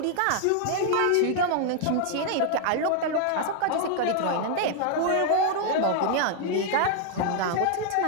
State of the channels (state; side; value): different; both; correlation 0.00